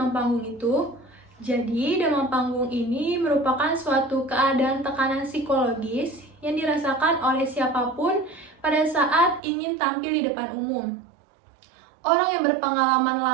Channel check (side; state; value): left; drops out; at 9.4 s